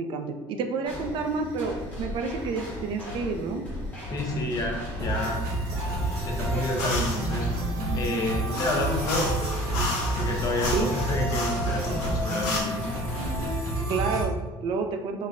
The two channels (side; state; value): both; normal; correlation 0.46